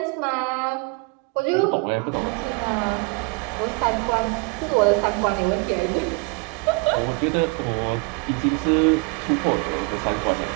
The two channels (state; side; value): quieter; left; 29.8 dB